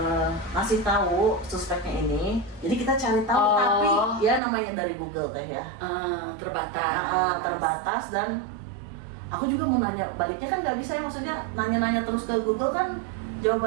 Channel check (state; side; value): drops out; left; at 4.4 s